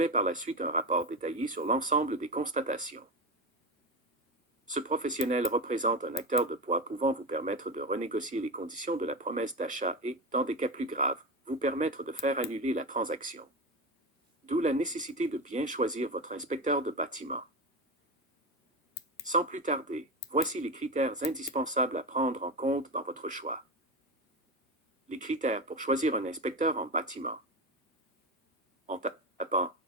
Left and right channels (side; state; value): both; normal; correlation 0.19